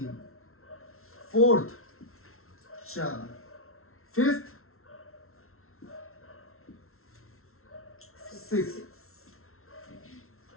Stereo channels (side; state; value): right; late; 0.62 ms